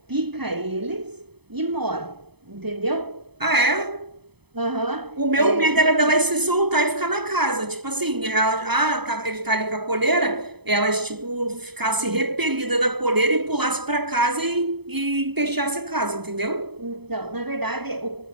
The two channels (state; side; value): late; left; 0.98 ms